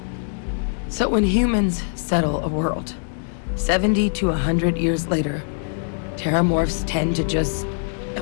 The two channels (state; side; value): silent; right; digital silence